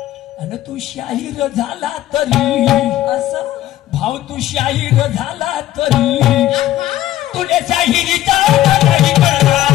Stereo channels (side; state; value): right; quieter; 14.0 dB